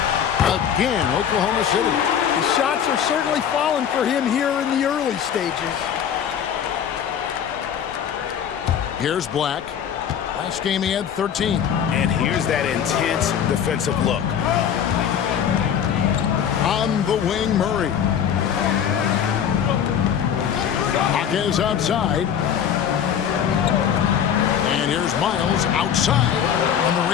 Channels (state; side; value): quieter; right; 8.6 dB